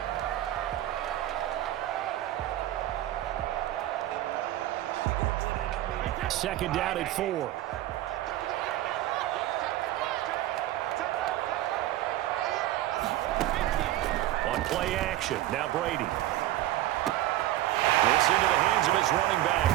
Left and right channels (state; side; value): quieter; left; 14.6 dB